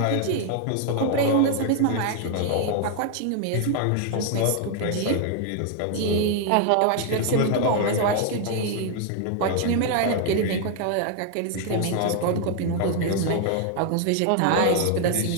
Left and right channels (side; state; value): both; different; correlation 0.00